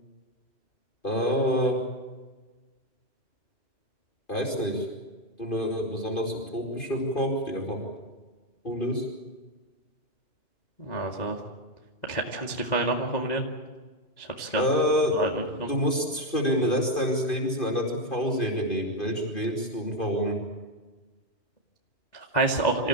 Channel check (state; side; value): late; right; 2.5 ms